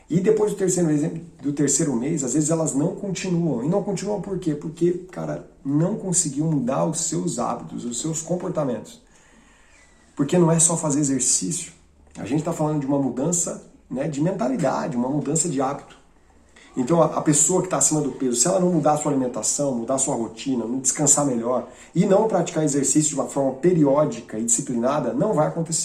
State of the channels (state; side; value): identical; both; correlation 1.00